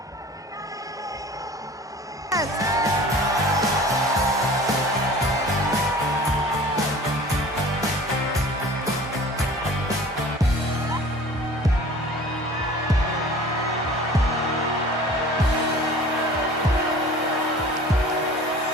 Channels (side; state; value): both; normal; correlation 0.44